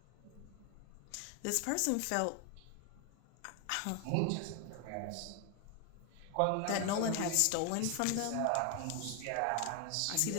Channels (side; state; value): both; different; correlation 0.01